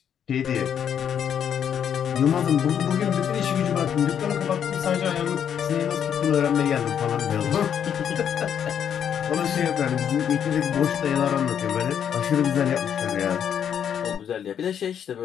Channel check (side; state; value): right; quieter; 8.6 dB